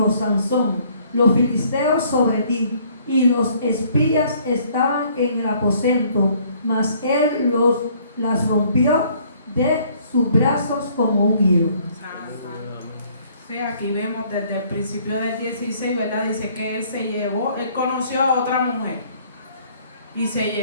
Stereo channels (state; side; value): inverted; both; correlation -0.60